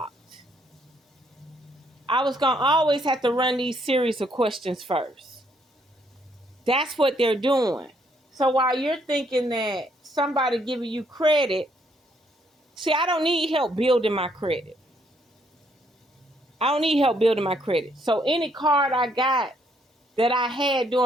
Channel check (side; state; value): both; normal; correlation 0.70